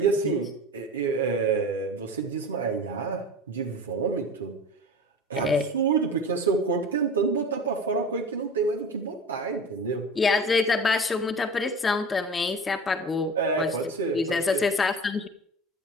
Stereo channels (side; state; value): both; normal; correlation 0.35